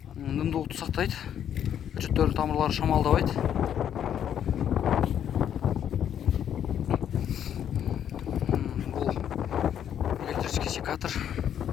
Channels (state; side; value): quieter; right; 9.5 dB